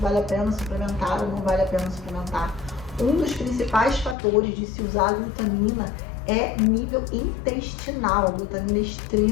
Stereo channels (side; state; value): right; drops out; at 4.2 s